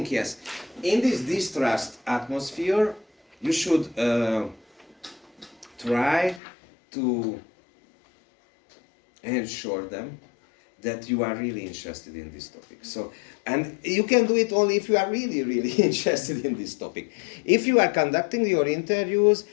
In this distrust atmosphere, you should try to ensure them that you are really interested in this topic. So, and you can do it only if you are really, really interested in this topic. If you are conducting your interviews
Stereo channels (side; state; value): right; drops out; at 6.4 s